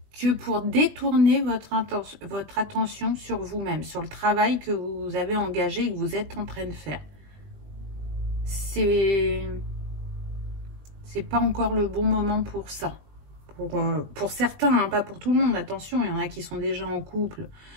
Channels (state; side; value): late; left; 20 ms